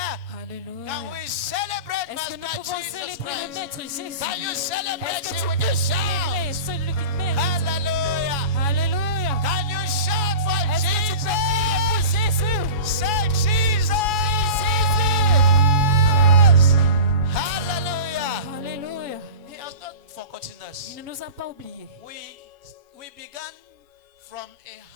Can Alléluia. we celebrate Est-ce que nous Master pouvons Jesus célébrer le Christ? Maître Jésus? Can you celebrate Est-ce que Him tu with peux a célébrer shout? celui qui te mérite? Hallelujah. Alléluia. Can you shout for Est-ce que tu peux crier pour Jesus? Jésus? Say Jesus. Jésus. Hallelujah. Alléluia. He has not forgotten us. Il ne nous a pas oubliés. We began from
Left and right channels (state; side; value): late; left; 7.1 ms